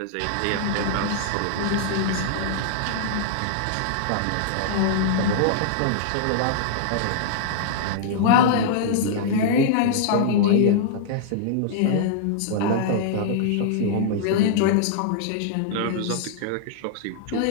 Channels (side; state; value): both; different; correlation -0.01